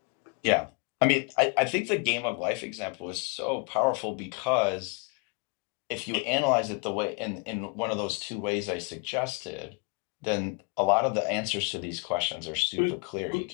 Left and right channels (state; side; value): quieter; right; 35.3 dB